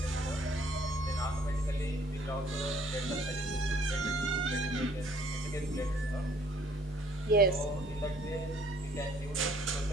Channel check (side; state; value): both; normal; correlation 0.60